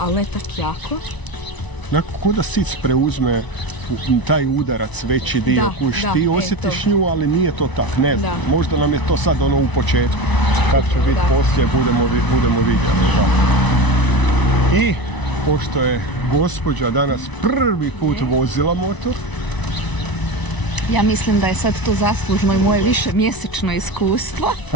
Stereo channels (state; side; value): late; right; 1.0 ms